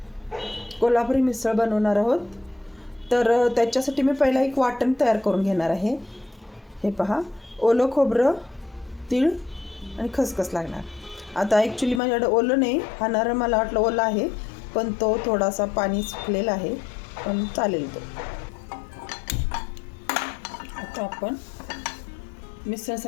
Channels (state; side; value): drops out; right; at 12.0 s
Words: कोल्हापुरी मिसळ बनवणार आहोत. तर त्याच्यासाठी मी पहिला एक वाटण तयार करून घेणार आहे. हे पहा, ओलं खोबरं, तीळ आणि खसखस लागणार. आता ॲक्च्युली माझ्याकडे ओलं नाही, हा नारळ मला वाटलं ओलं आहे, पण तो थोडासा पाणी सुकलेला आहे, पण चालेल तो. आता आपण